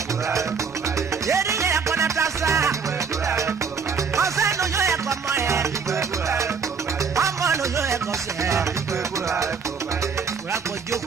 Yeri ye kona tasa. Ose no yo e komo e. Amo no yo e kose. Kura ko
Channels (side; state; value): left; quieter; 5.8 dB